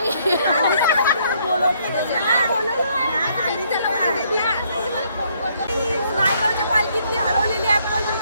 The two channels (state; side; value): inverted; both; correlation -0.69